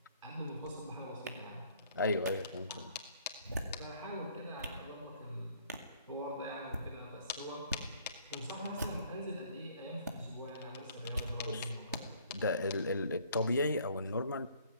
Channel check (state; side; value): inverted; both; correlation -0.60